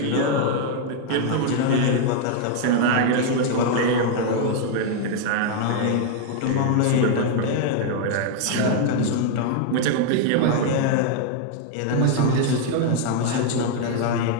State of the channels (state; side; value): different; both; correlation 0.00